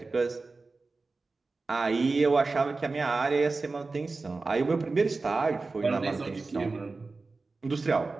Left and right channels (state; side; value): quieter; left; 3.8 dB